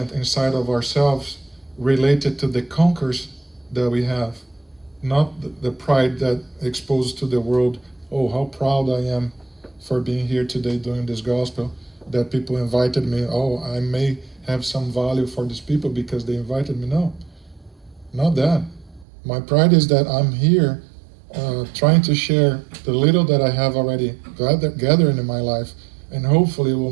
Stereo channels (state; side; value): drops out; left; at 19.1 s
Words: inside of ourselves, related to the conquers that we have, not the pride that exposed to the world. Oh, how proud I am for being here today doing this gospel, that people invited me. Oh, I may have some value for these people because they invited me. No, not that. My pride is that I'm here trying to share the little that I have already gathered in my life, and hopefully it will